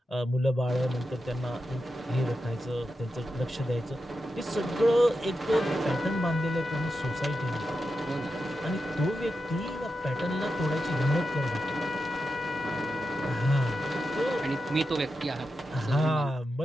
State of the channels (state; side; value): normal; both; correlation 0.89